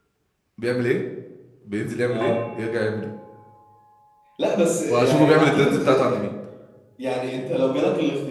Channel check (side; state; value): both; identical; correlation 1.00